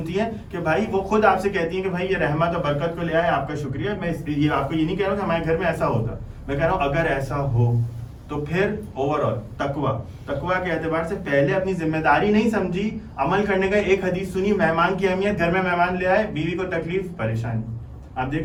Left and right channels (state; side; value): identical; both; correlation 1.00